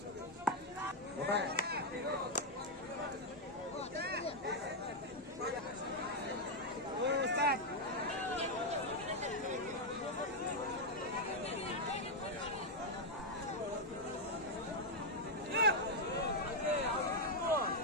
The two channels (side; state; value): both; normal; correlation 0.01